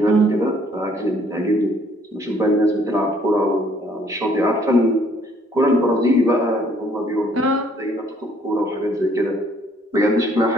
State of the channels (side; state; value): both; normal; correlation 0.63